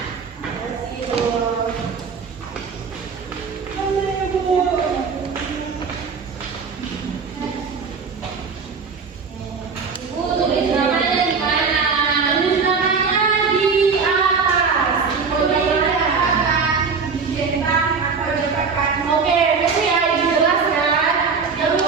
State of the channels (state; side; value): quieter; left; 5.3 dB